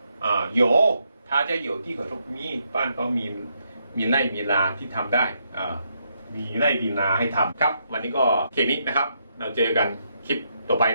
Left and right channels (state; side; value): inverted; both; correlation -0.78